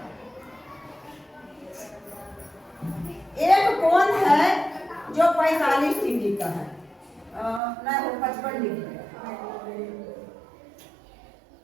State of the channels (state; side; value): drops out; left; at 7.6 s